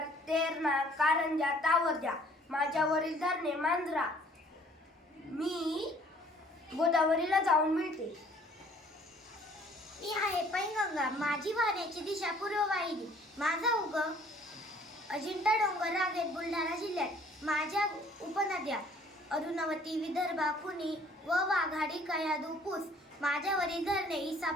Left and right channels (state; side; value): normal; both; correlation 0.57